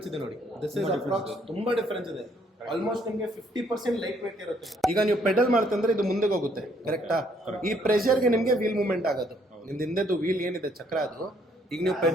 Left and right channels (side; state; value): both; normal; correlation 0.67